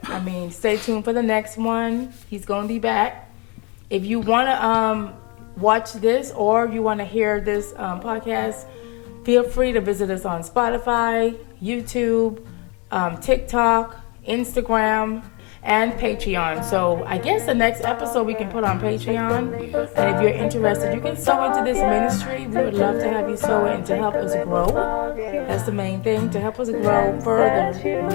I mean, stay tuned for the next one. He's going to be back. If you want to watch this or you want to hear this podcast, feel free to visit us on Spotify, YouTube, TikTok, Instagram, and Patreon. So I guess the next episode we can put on Patreon. And if you're interested, you can sow into this ministry. We would love to have you sow in to help us grow. That's the main thing, to help us grow further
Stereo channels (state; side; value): quieter; right; 30.7 dB